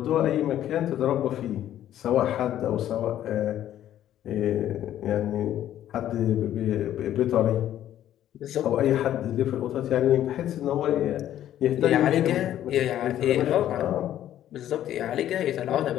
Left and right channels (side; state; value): right; quieter; 11.8 dB